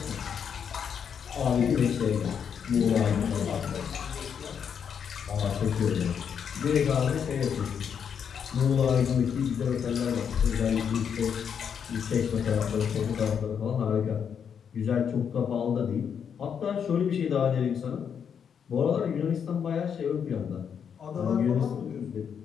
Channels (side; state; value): right; quieter; 7.5 dB